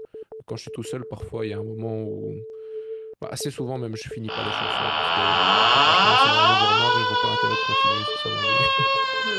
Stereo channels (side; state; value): both; identical; correlation 1.00